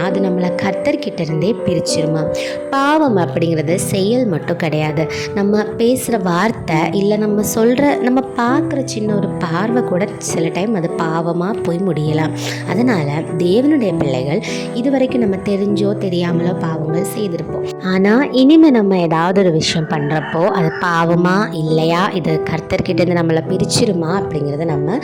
அது நம்மளை கர்த்தர்கிட்ட இருந்தே பிரிச்சிருமா. பாவம் அப்படிங்கிறது செயல் மட்டும் கிடையாது. நம்ம பேசுகிற வார்த்தை இல்லை நம்ம பார்க்குற சின்ன ஒரு பார்வை கூட சில டைம் அது பாவமாக போய் முடியலாம். அதனால் தேவனுடைய பிள்ளைகள் இதுவரைக்கும் நம்ம தெரிஞ்சோ தெரியாமலோ பாவங்கள் செய்திருப்போம். ஆனால் இனிமேல் நம்ம ஏதாவது ஒரு விஷயம் பண்ணுறப்போ அது பாவமா இல்லையா, இது கர்த்தர்கிட்டேருந்து நம்மளை பிரிச்சிருமா அப்படிங்கிறத நம்ம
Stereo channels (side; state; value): both; identical; correlation 1.00